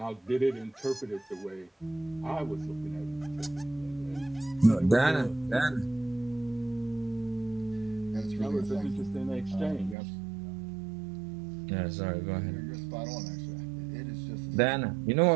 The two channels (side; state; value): left; drops out; at 10.0 s